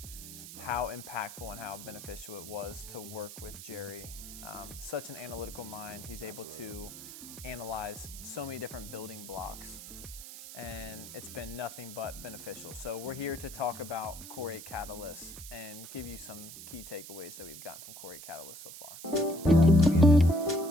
how impactful and how beneficial it was to work with Jerry. Such an analytical mind. He's able to analyze so many different building blocks, and it's been nothing but beneficial. So we're here to talk about Core8 Catalyst and give you some key takeaways that we've gotten from Core8 Catalyst so far.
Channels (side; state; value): right; noise; hiss, 12 dB below the sound